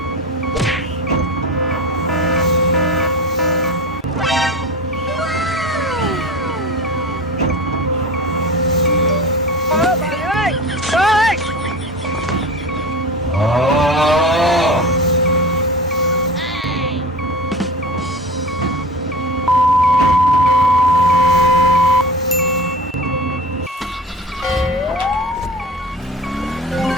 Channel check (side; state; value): both; normal; correlation 0.33